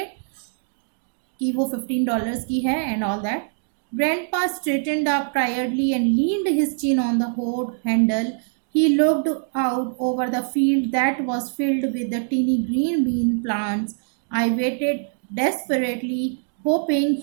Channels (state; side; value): silent; left; digital silence